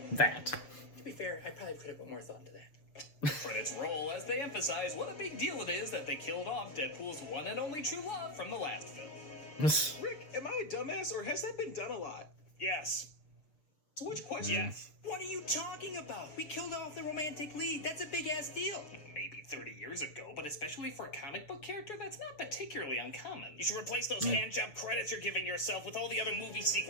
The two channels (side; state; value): right; late; 6.7 ms